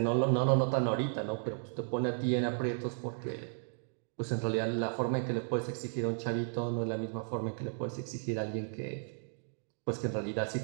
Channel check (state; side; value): silent; left; digital silence